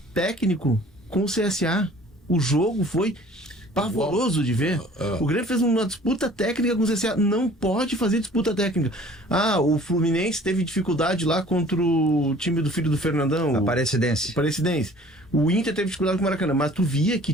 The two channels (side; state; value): both; normal; correlation 0.50